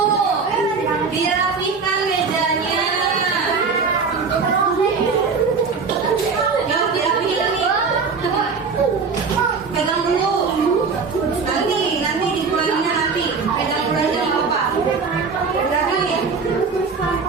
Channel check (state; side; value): quieter; left; 5.0 dB